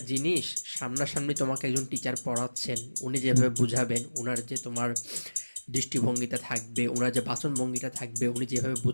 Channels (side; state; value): both; inverted; correlation -1.00